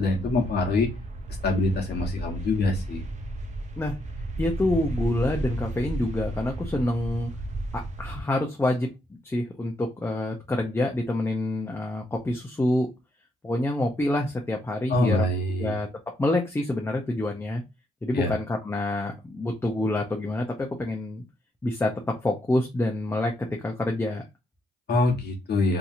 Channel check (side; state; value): both; normal; correlation 0.77